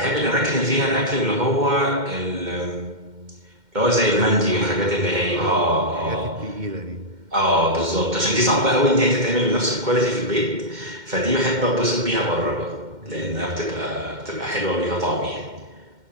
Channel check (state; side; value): late; left; 2.1 ms